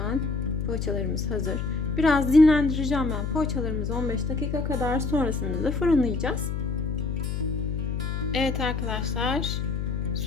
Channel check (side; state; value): left; noise; hum, 2 dB below the sound